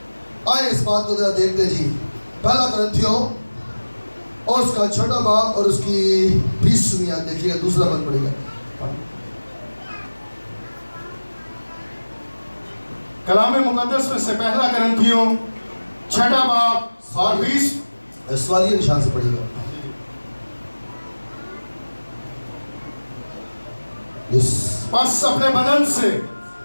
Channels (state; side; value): inverted; both; correlation -1.00